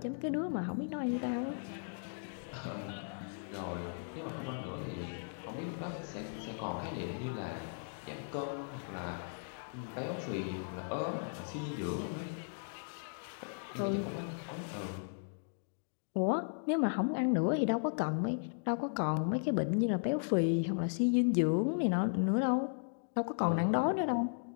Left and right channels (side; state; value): right; silent; digital silence